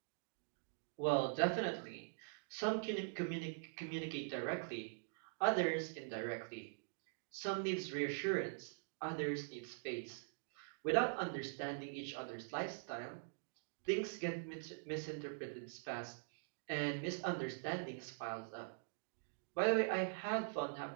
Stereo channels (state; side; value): silent; left; digital silence